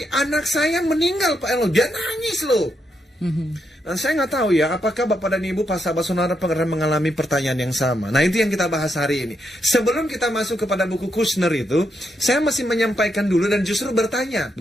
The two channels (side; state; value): both; normal; correlation 0.80